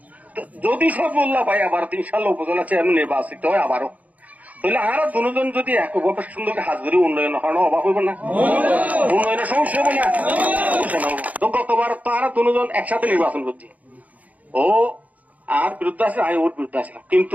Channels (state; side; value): late; left; 0.074 ms